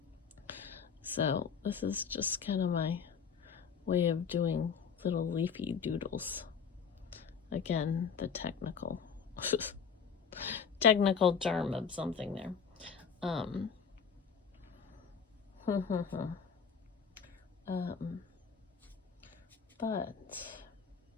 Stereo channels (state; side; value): quieter; right; 6.5 dB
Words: So this is just kind of my way of doing little leafy doodles. Again, the technical term of something there. But